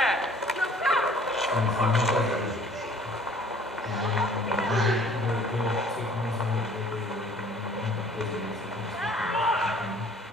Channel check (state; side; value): normal; both; correlation 0.54